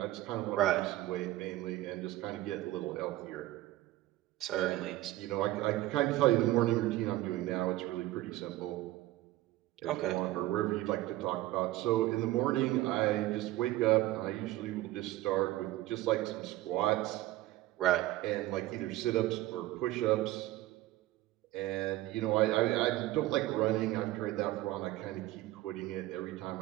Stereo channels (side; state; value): left; quieter; 16.5 dB